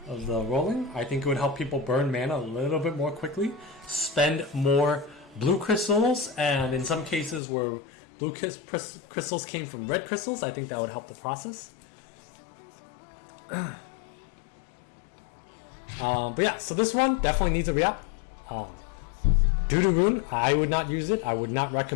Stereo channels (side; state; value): right; drops out; at 7.4 s